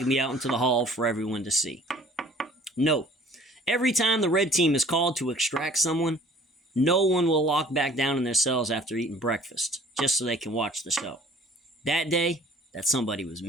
me out into the hall for everyone to see. Note, every time the red team is called to extract someone, no one will lock back down in their cells after eating breakfast, just so they can watch the show. That day, that somebody was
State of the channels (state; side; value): normal; both; correlation 0.52